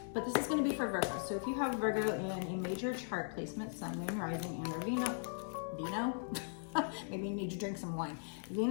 But this is going to be for Virgo. So if you have Virgo in a major chart placement, Sun, Moon, Rising, and or Venus, maybe you need to drink some wine,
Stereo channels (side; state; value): right; silent; digital silence